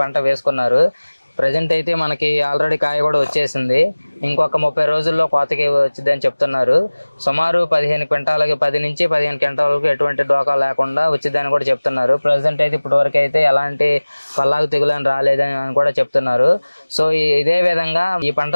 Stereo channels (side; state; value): both; inverted; correlation -1.00